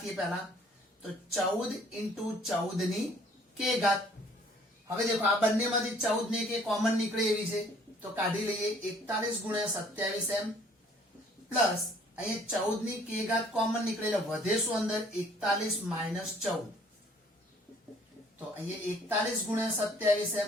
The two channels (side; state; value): both; normal; correlation 0.58